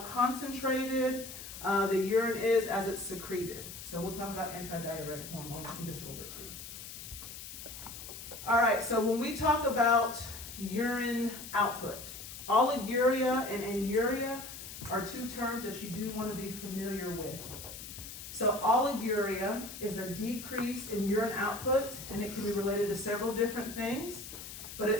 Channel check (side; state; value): left; noise; hiss, 11 dB below the sound